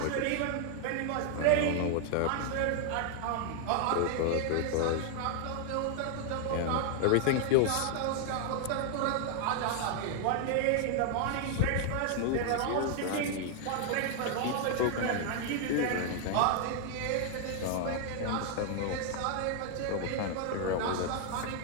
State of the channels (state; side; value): different; both; correlation 0.00